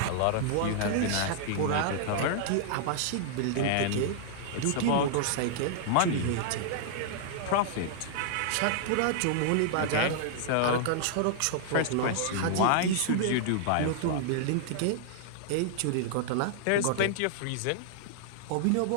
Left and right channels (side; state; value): both; different; correlation -0.01